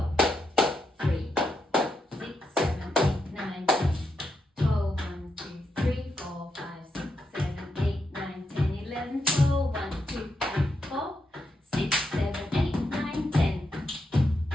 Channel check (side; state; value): both; normal; correlation 0.83